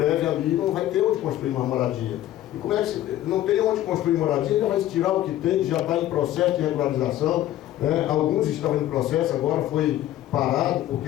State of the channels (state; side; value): quieter; right; 13.5 dB